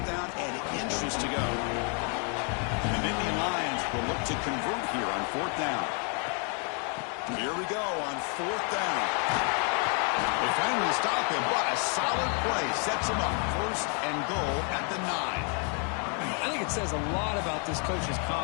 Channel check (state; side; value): quieter; right; 39.3 dB